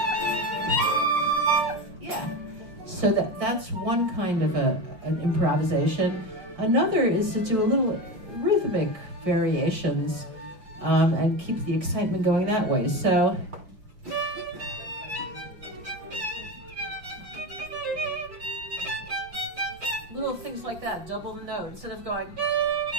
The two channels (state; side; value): late; left; 5.7 ms